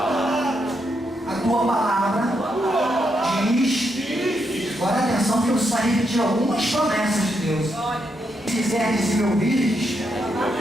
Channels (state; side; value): normal; both; correlation 0.80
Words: A tua palavra diz, agora atenção que eu preciso repetir algumas promessas de Deus. Se quiseres e me ouvires,